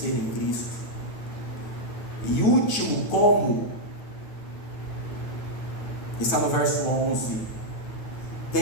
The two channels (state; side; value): late; right; 9.3 ms